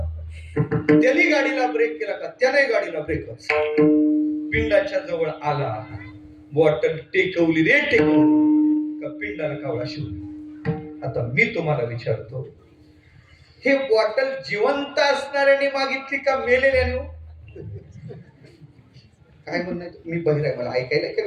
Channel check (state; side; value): identical; both; correlation 1.00